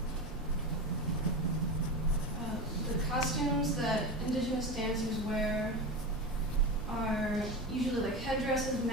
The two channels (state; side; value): normal; both; correlation 0.23